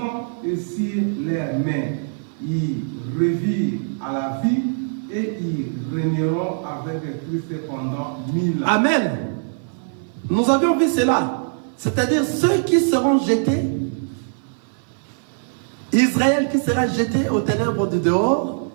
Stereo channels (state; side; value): silent; left; 58 dB below the other